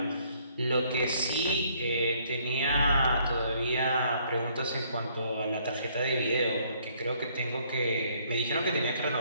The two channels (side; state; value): both; inverted; correlation -0.65